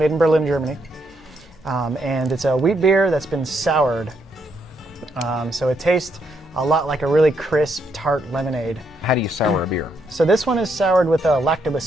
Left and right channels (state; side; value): normal; both; correlation 0.76